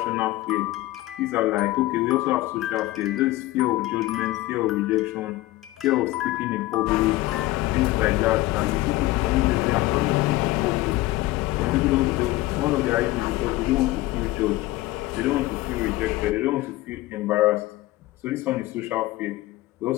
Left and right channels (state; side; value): quieter; right; 17.9 dB